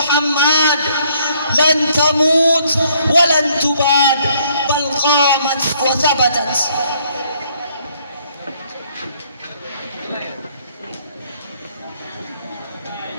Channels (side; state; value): both; inverted; correlation -0.66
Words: لن تموت ولن تباد بل قامت وثبتت